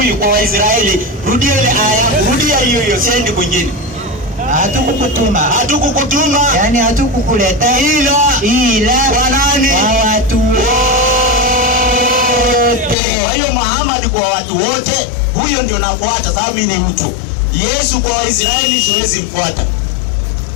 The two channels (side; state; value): right; drops out; at 13.0 s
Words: kwa Waisraeli. Rudia ile aya, rudia hiyo, siendi kwingine. Hatukukutuma. Yani hatukukuleta ila kwa nani? Kwa watu wote. Kwa hiyo Muhammad kwa watu wote, huyo ndio nafuata sababu mimi ni mtu. Yesu kwa Waisraeli siwezi mfuata.